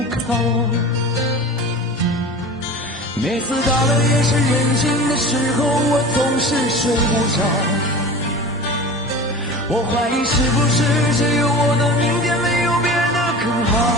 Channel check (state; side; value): normal; both; correlation 0.35